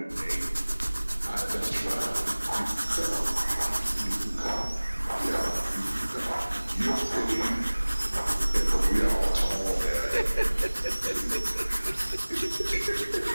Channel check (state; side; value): inverted; both; correlation -1.00